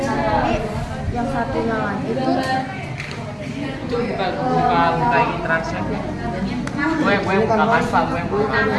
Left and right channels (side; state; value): both; identical; correlation 1.00